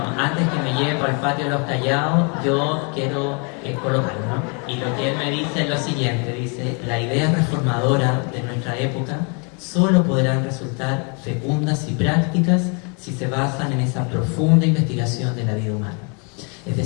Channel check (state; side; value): quieter; right; 35.8 dB